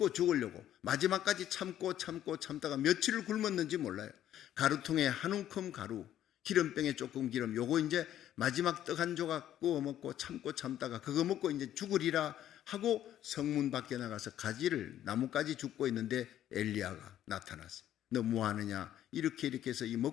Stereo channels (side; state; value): right; quieter; 11.6 dB